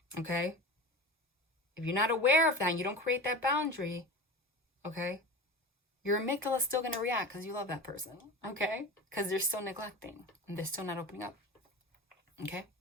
Okay? If you're not aware of that and you don't create that boundary, okay, your amygdala is still going to react because you love that person, okay? Because they're still neglecting and they're still not opening up, okay?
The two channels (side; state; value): both; normal; correlation 0.31